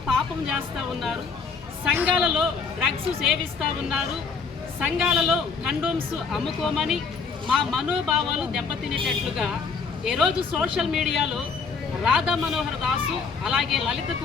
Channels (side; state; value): right; quieter; 5.2 dB